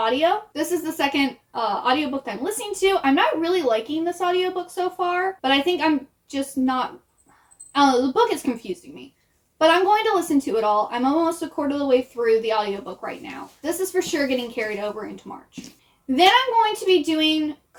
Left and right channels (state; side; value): identical; both; correlation 1.00